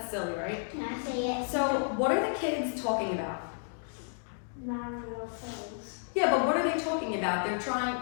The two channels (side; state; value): right; silent; digital silence